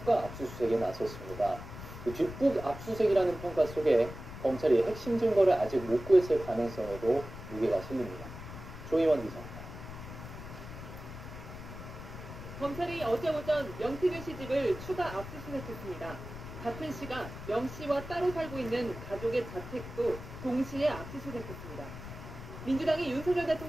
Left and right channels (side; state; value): left; noise; rumble, 11 dB below the sound